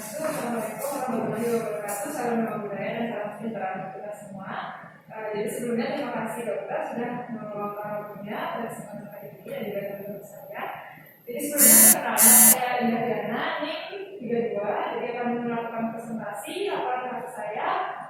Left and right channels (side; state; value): both; identical; correlation 1.00